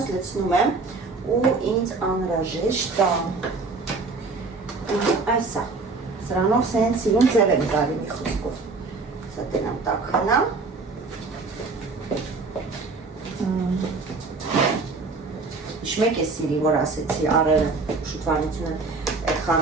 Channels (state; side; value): quieter; left; 3.9 dB